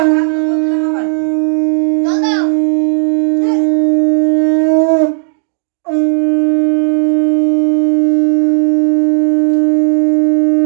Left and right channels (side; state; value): left; silent; digital silence